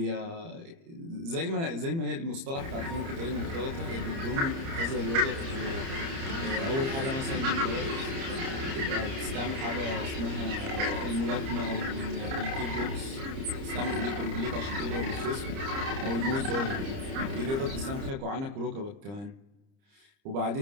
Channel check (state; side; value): late; left; 30 ms